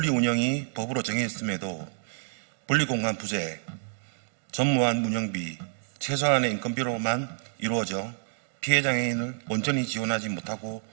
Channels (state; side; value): silent; left; digital silence